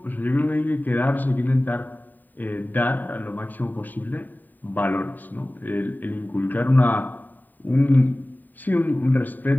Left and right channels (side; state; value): right; late; 0.088 ms